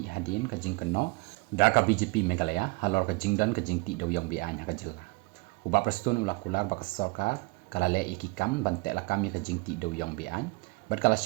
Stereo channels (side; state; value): left; quieter; 26.4 dB